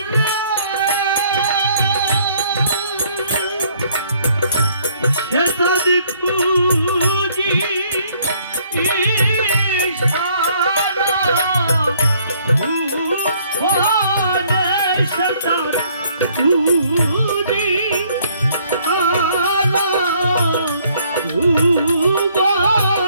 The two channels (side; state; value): both; inverted; correlation -0.64